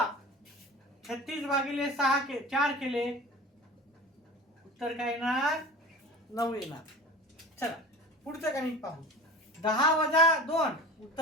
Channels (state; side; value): normal; both; correlation 0.36